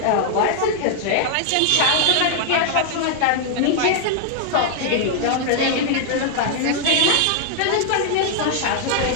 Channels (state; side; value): different; both; correlation 0.00